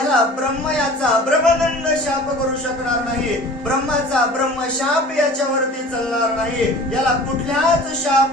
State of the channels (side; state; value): both; normal; correlation 0.43